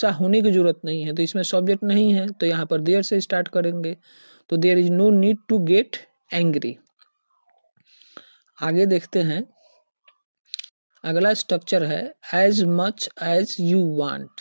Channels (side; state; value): both; inverted; correlation -1.00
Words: होने की जरूरत नहीं है, तो इसमें सब्जेक्ट नहीं है, तो यहाँ पर देयर से स्टार्ट करेंगे। तो there is no need to get angry. आगे देखते हैं, अगला स्ट्रक्चर है as much as you want.